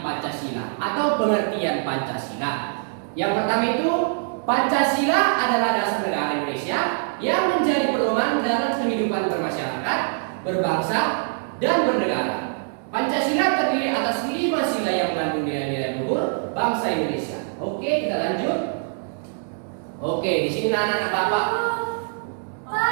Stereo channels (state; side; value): silent; left; digital silence